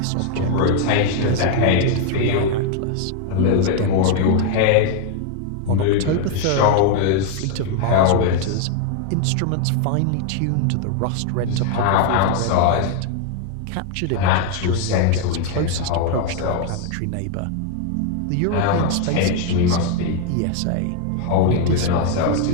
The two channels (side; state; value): both; different; correlation 0.00